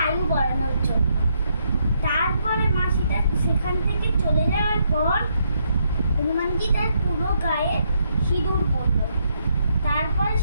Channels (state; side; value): inverted; both; correlation -0.76